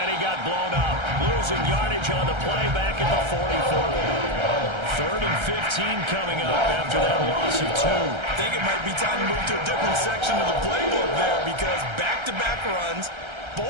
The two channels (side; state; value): left; late; 1.3 ms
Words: he got blown up. Losing yardage on the play back at the 44. 3rd and 15 coming up after that loss of 2. I think it might be time to move to a different section of the playbook there because back-to-back runs,